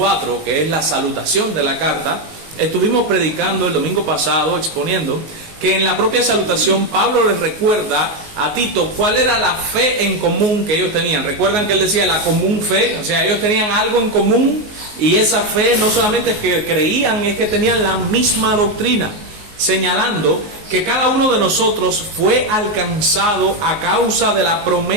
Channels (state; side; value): late; left; 19 ms